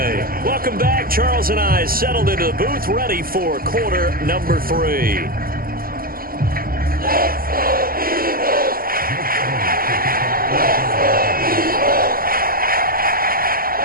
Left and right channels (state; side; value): late; left; 0.42 ms